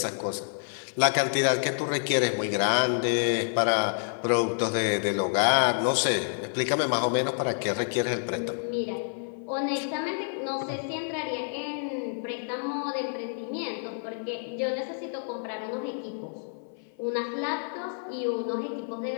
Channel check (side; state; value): right; silent; 56 dB below the other